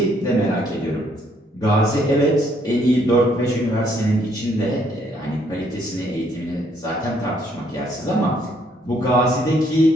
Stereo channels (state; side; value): normal; both; correlation 0.68